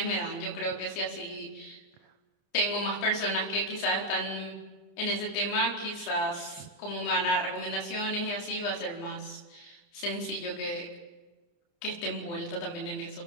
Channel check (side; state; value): right; late; 29 ms